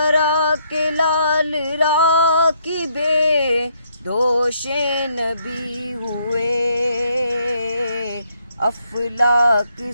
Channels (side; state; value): both; inverted; correlation -0.72